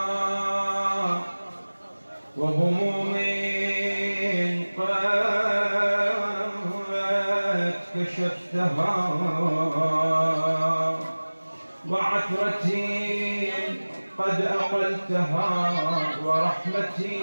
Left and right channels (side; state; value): both; inverted; correlation -1.00